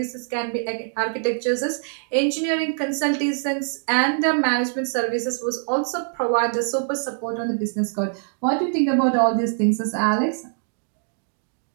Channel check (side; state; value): left; silent; digital silence